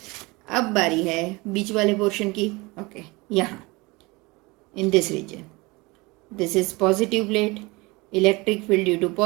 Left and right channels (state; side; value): quieter; left; 24.2 dB